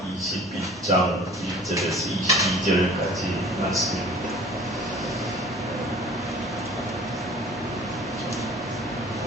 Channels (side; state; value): both; normal; correlation 0.47